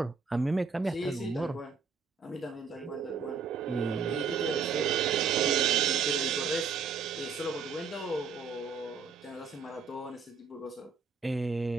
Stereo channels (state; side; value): quieter; left; 5.5 dB